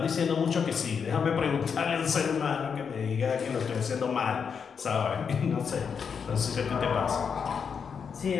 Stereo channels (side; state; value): right; quieter; 6.5 dB